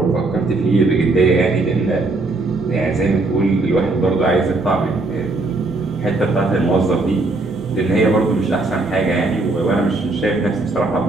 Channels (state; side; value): quieter; left; 3.1 dB